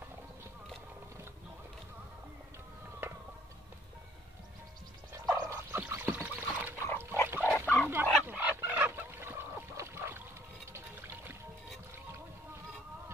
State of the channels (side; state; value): both; normal; correlation 0.60